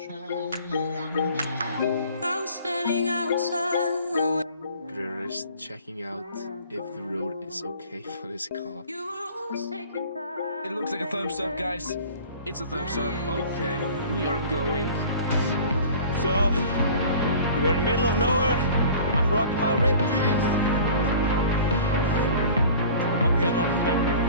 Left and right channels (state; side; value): inverted; both; correlation -0.45